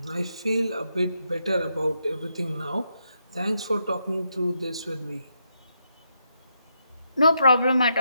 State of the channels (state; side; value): inverted; both; correlation -0.81